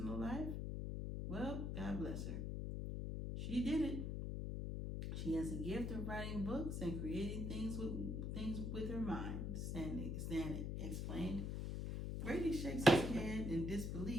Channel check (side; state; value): left; noise; hum, 2 dB below the sound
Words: life? Well, God bless her. She did it. She has a gift of writing books and creating things with her mind, Stan explained. Brady shakes his head in